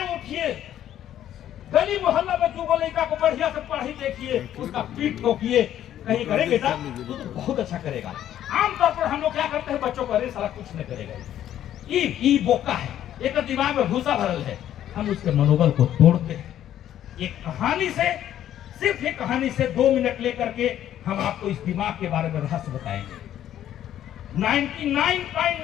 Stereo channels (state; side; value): quieter; right; 11.4 dB